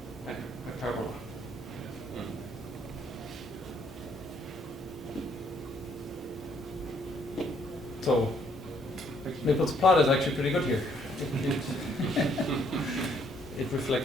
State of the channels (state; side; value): normal; both; correlation 0.67